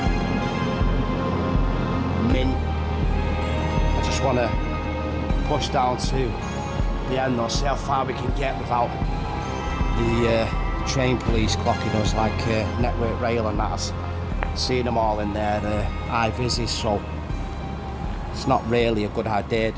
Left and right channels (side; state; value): both; identical; correlation 1.00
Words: Mint. I just want to push down to the end though, see how far we can get without the train police clocking us like Network Rail and that. I've seen them all in their high vises, so it's not really a good idea